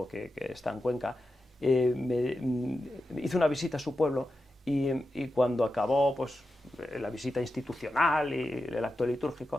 que está en Cuenca, hizo una visita a su pueblo y cuando acabó pues la visita institucional y el acto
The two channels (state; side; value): normal; both; correlation 0.90